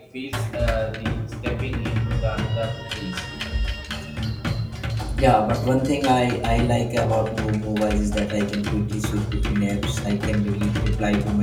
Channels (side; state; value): both; identical; correlation 1.00